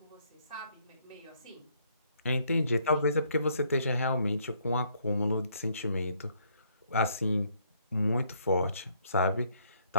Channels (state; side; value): inverted; both; correlation -0.69